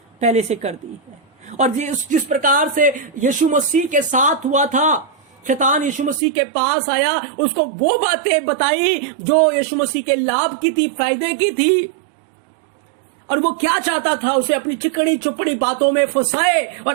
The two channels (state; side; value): drops out; left; at 6.2 s